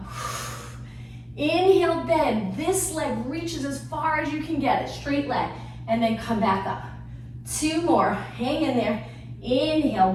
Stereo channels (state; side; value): identical; both; correlation 1.00